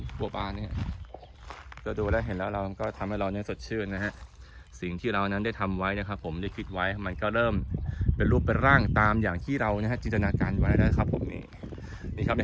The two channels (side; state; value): both; identical; correlation 1.00